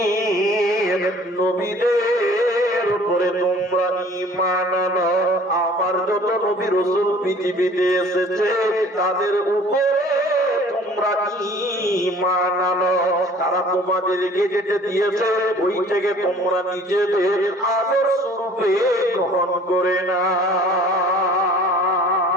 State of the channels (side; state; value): both; normal; correlation 0.50